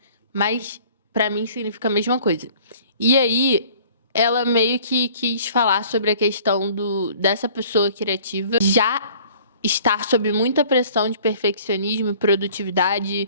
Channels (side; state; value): both; inverted; correlation -0.52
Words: Mas pra mim significa a mesma coisa. E aí, ela meio que quis falar sobre a questão dessa pessoa criativa já estar sob muita pressão de perfeccionismo,